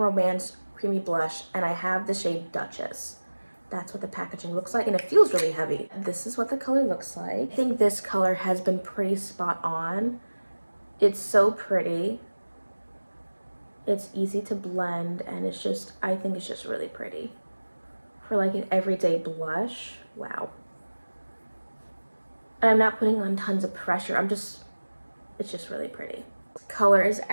Creamy Blush, and I have the shade Duchess. That's what the packaging looks like, and it feels really heavy. This is what the color looks like. I think this color has been pretty spot on. It's so pretty. It's easy to blend, and I think it's just really pretty. For like an everyday blush, wow. And I'm not putting on tons of pressure. It's just really pretty. Color is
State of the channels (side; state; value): both; inverted; correlation -1.00